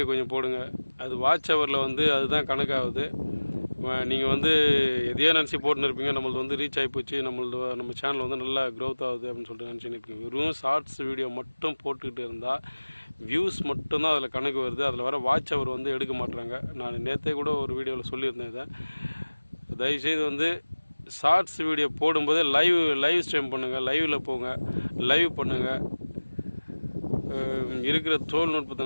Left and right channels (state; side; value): inverted; both; correlation -1.00